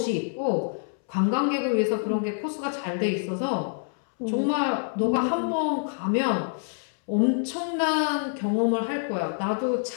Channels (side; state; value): right; silent; 61 dB below the other